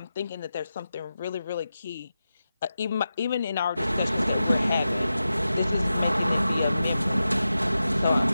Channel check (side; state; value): both; inverted; correlation -0.92